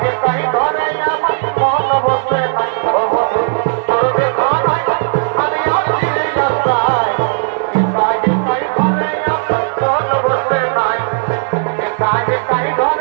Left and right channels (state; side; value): silent; left; digital silence